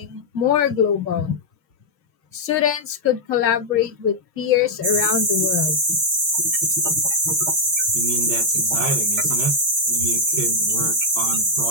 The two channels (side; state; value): left; late; 6.4 ms